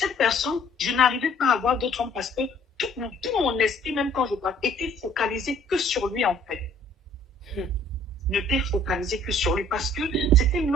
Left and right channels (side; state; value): both; normal; correlation 0.57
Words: personne, je n'arrivais pas à voir d'autres hommes parce que tout mon esprit, même quand je parle, était focalisé que sur lui en fait. N'était focalisé que sur lui parce que c'était